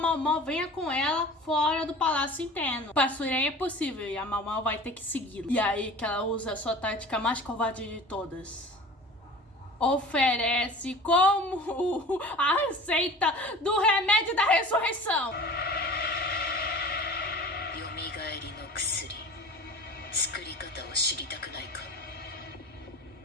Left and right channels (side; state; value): both; normal; correlation 0.40